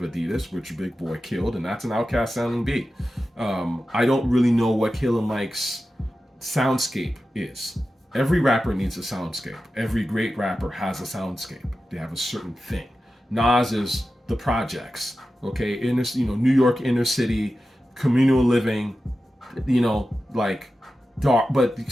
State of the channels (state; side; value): normal; both; correlation 0.93